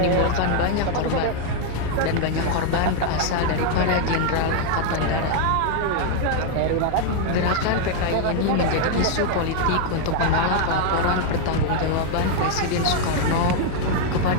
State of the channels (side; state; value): both; different; correlation 0.00